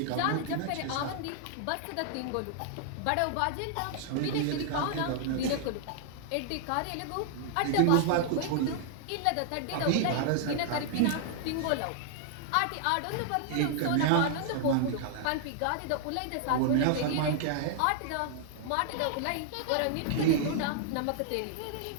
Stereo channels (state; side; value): different; both; correlation -0.01